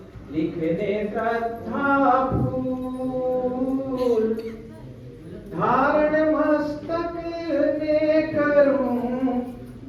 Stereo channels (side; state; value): both; identical; correlation 1.00